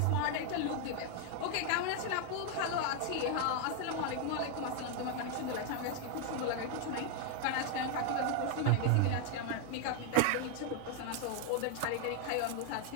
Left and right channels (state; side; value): different; both; correlation 0.00